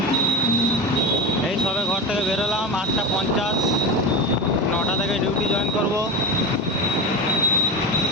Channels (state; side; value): normal; both; correlation 0.24